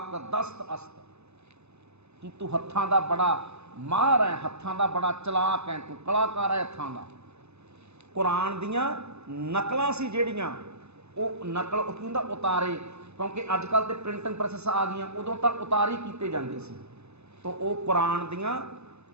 ਦਸਤ ਅਸਤ, ਕਿ ਤੂੰ ਹੱਥਾਂ ਦਾ ਬੜਾ ਮਾਹਰ ਹੈ, ਹੱਥਾਂ ਦਾ ਬੜਾ ਚਲਾਕ ਹੈ, ਤੂੰ ਕਲਾਕਾਰ ਹੈ ਹੱਥਾਂ ਦਾ। ਕੁਰਾਨ ਦੀਆਂ ਨਕਲਾਂ ਸੀ ਜਿਹੜੀਆਂ, ਉਹ ਨਕਲ ਉਹ ਕੀ ਹੁੰਦਾ ਉਤਾਰੇ, ਕਿਉਂਕਿ ਅੱਜ ਕੱਲ੍ਹ ਤੇ ਪ੍ਰਿੰਟਿੰਗ ਪ੍ਰੈਸਸ ਆ ਗਈਆਂ, ਉਦੋਂ ਤਾਂ ਉਤਾਰੀ ਕੀਤੇ ਜਾਂਦੇ ਸੀ। ਤੋ ਉਹ ਕੁਰਾਨ ਦੀਆਂ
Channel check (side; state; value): left; late; 0.81 ms